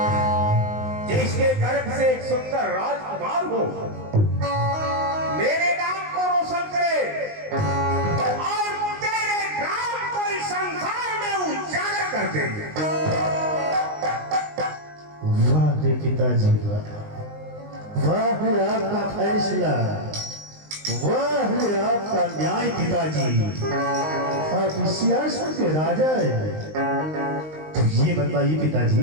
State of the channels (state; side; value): late; left; 19 ms